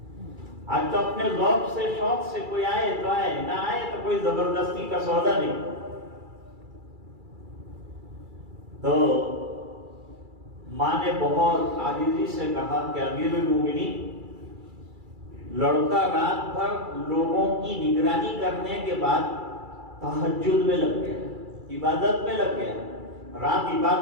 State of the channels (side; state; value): left; late; 2.3 ms